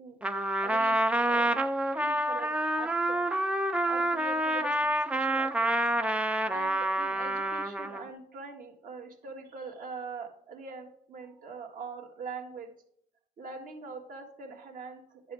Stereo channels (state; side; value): normal; both; correlation 0.75